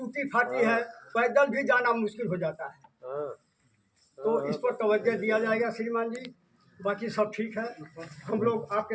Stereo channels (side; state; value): both; identical; correlation 1.00